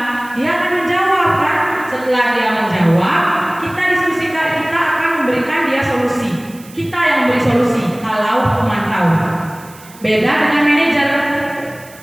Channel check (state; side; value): noise; right; hiss, 22 dB below the sound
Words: Dia akan menjawab kan. Setelah dia menjawab, kita diskusikan, kita akan memberikan dia solusi. Kita yang beri solusi kalau pemantau. Beda dengan manajer.